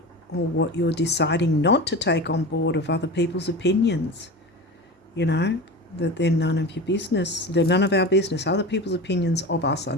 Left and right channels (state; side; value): normal; both; correlation 0.29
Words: or what you're deciding not to take on board of other people's opinions. You know, that they're none of your business. They're none of our business. Other people's opinions of us are